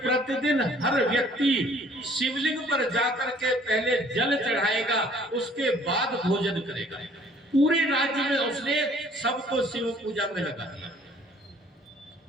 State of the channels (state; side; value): normal; both; correlation 0.57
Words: प्रतिदिन हर व्यक्ति शिवलिंग पर जाकर के पहले जल चढ़ाएगा, उसके बाद भोजन करेगा। पूरे राज्य में उसने सबको शिव पूजा में लगा दिया।